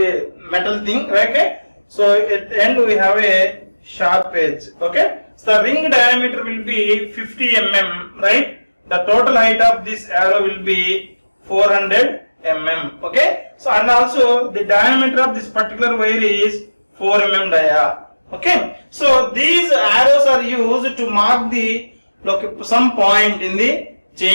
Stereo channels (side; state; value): both; inverted; correlation -1.00